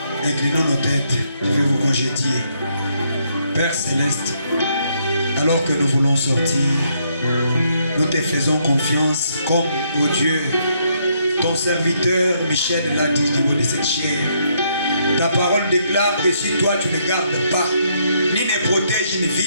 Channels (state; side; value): inverted; both; correlation -0.73